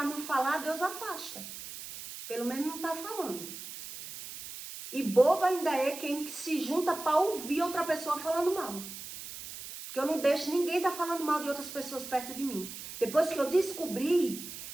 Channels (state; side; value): noise; right; hiss, 11 dB below the sound